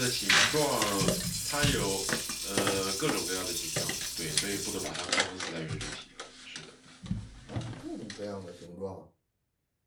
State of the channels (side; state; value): both; identical; correlation 1.00